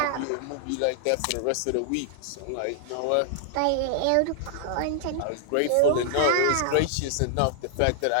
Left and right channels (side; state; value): both; different; correlation -0.01